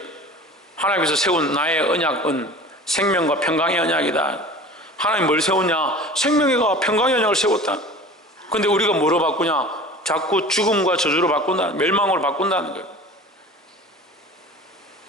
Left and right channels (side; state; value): both; normal; correlation 0.40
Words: 하나님께서 세운 나의 언약은 생명과 평강의 언약이다. 하나님 뭘 세웠냐? 생명과 평강의 언약을 세웠다. 근데 우리가 뭐로 바꾸냐? 자꾸 죽음과 저주로 바꾼다, 멸망으로 바꾼다는 거예요.